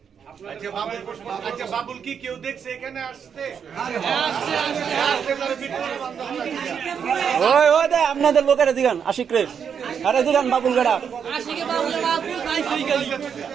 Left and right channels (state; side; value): quieter; left; 7.3 dB